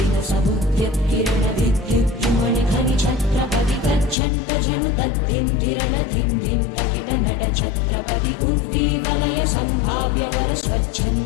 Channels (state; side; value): drops out; right; at 4.2 s